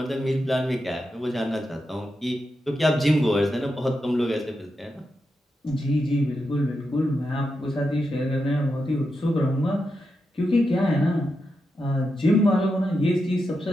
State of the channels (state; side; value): normal; both; correlation 0.87